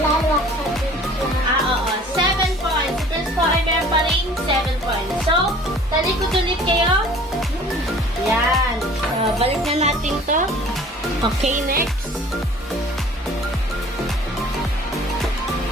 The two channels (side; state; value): both; normal; correlation 0.49